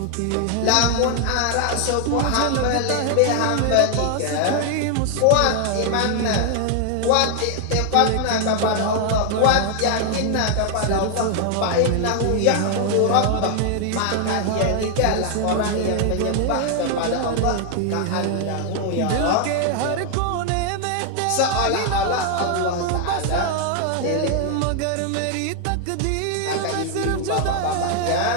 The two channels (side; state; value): both; different; correlation 0.00